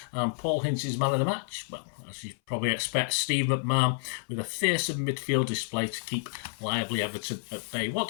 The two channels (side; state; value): right; silent; 58 dB below the other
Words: And Paul Hince's man of the match, well, as you probably expect, Steve McMahon with a fearsome midfield display to keep lively Everton at bay. What